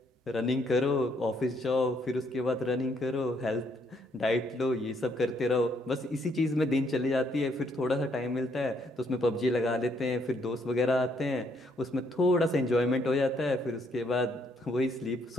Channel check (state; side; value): normal; both; correlation 0.71